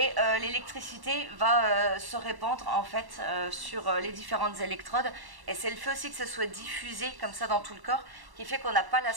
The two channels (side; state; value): left; late; 1.1 ms